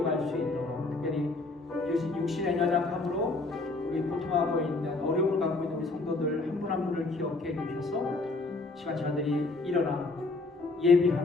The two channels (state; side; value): quieter; right; 3.3 dB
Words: 수 있도록, 특별히 육신의 연약함으로 우리 고통하고 있는 어려움을 갖고 있는 우리 성도들 한 분 한 분을 기억해 주셔서 시간 저들이 일어나